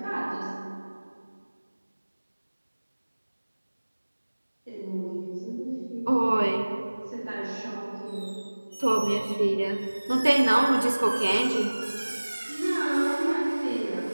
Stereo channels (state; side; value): inverted; both; correlation -1.00